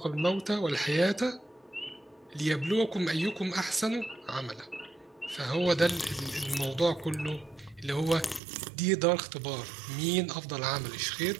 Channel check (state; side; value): drops out; left; at 8.4 s